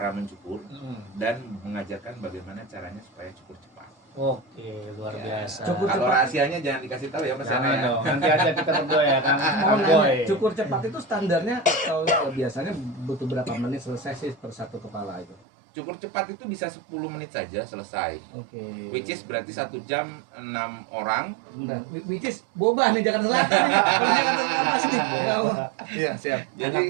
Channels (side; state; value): left; drops out; at 15.4 s